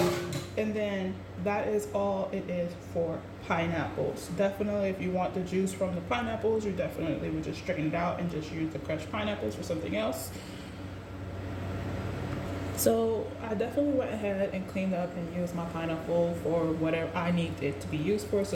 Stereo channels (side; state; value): both; identical; correlation 1.00